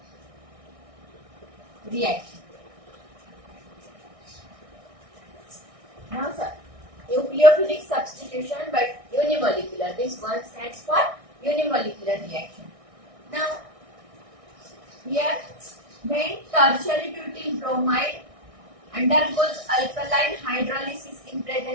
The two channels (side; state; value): left; late; 1.6 ms